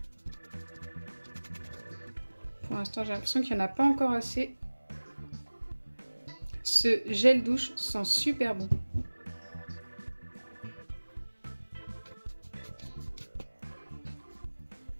Pour l'instant, j'ai l'impression qu'il n'y en a pas encore assez. Ce gel douche sent super bon.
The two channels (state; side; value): inverted; both; correlation -1.00